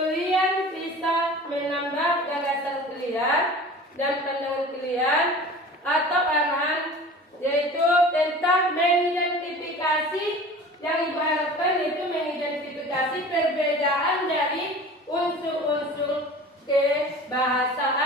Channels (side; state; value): both; normal; correlation 0.40